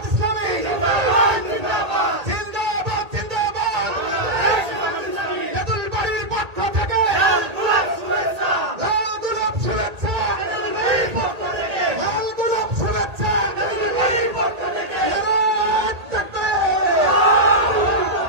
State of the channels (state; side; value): late; left; 1.8 ms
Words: ইসলামী জিন্দাবাদ, জিন্দাবাদ, জিন্দাবাদ, তেঁতুল বাড়ির পক্ষ থেকে লাল গোলাপ শুভেচ্ছা, লাল গোলাপ শুভেচ্ছা, তেঁতুল বাড়ির পক্ষ থেকে লাল গোলাপ শুভেচ্ছা, তেঁতুল বাড়ির পক্ষ থেকে নারে তাকবীর।